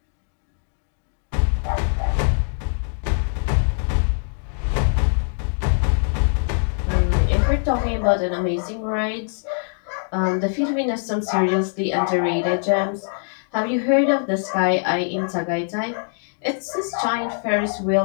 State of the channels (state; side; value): silent; right; 64 dB below the other